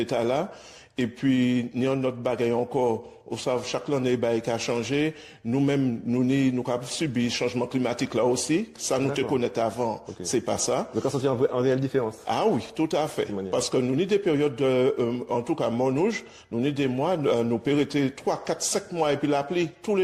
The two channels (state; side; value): identical; both; correlation 1.00